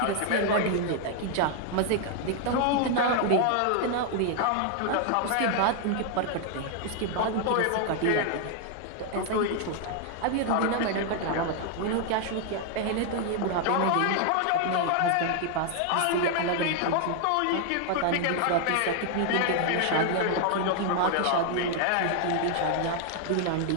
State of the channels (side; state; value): both; different; correlation 0.00